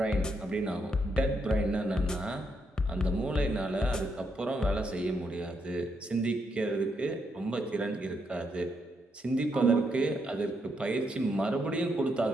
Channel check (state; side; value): normal; both; correlation 0.78